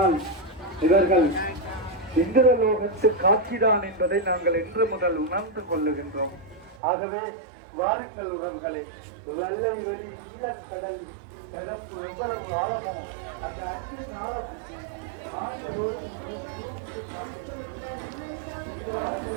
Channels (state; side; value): drops out; left; at 6.8 s